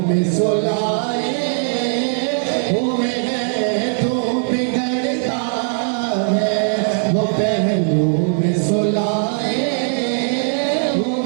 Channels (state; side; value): silent; left; 61 dB below the other